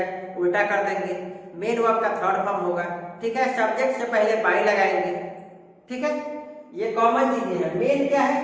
उल्टा कर देंगे। मेन वर्ब का थर्ड फॉर्म होगा, ठीक है। सब्जेक्ट से पहले बाई लगाएंगे, ठीक है। ये कॉमन चीजें हैं। मेन क्या है,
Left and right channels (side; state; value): both; identical; correlation 1.00